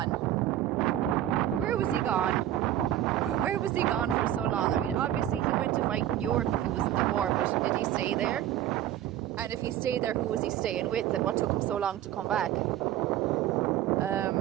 Where was he gone? Where was he gone for so long? I mean, obviously, he went to fight in Europe if he was in the war, but did he stay there? And if he stayed there, who was he staying with, and what took him so long to come back?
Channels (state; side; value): quieter; left; 12.4 dB